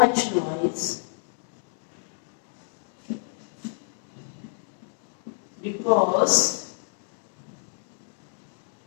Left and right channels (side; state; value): right; silent; digital silence